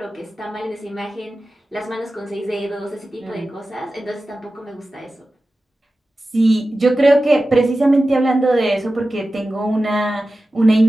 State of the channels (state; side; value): normal; both; correlation 0.94